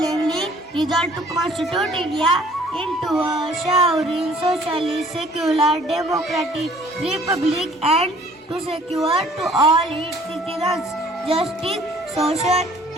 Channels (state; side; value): normal; both; correlation 0.56